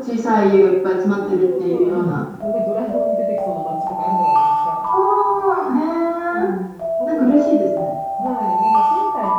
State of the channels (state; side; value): identical; both; correlation 1.00